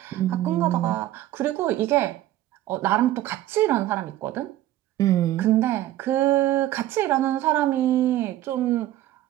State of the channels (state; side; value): quieter; left; 14.2 dB